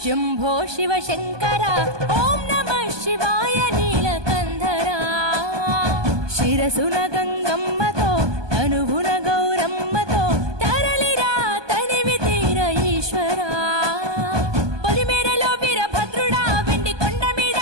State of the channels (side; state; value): left; late; 1.2 ms